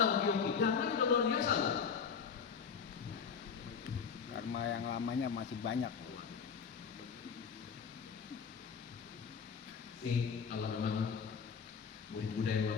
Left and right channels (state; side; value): quieter; right; 6.4 dB